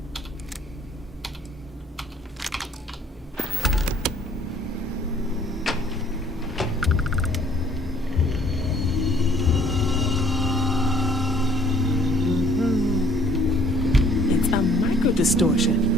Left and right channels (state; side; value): normal; both; correlation 0.58